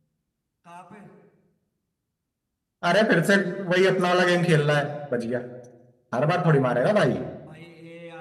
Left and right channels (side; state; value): both; identical; correlation 1.00